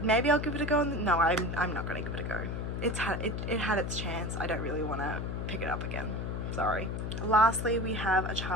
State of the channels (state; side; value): noise; left; hum, 3 dB below the sound